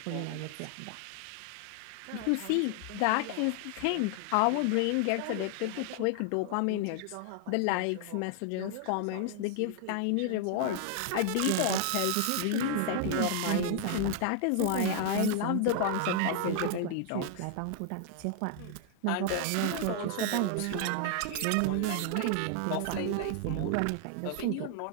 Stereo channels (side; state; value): both; different; correlation 0.00